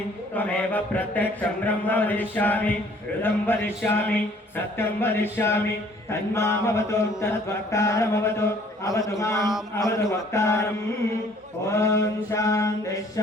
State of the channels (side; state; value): both; normal; correlation 0.57